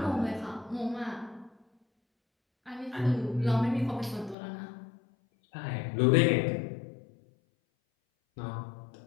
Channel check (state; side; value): drops out; right; at 4.4 s